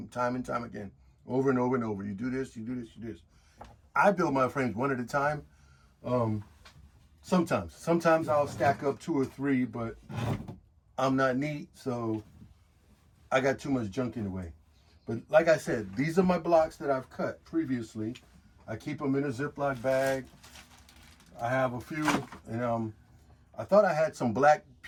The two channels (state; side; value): identical; both; correlation 1.00